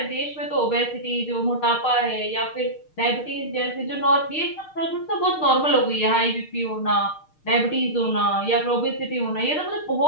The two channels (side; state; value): right; late; 6.5 ms